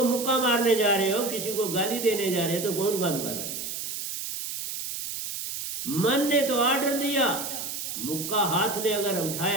मुक्का मारने जा रहे हो, किसी को गाली देने जा रहे हो, तो कौन काम कर रहा है? मन ने तो ऑर्डर दिया, मुक्का हाथ ने अगर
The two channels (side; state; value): right; noise; hiss, 6 dB below the sound